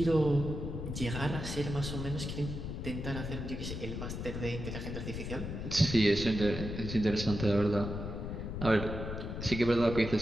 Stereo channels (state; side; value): noise; left; rumble, 5 dB below the sound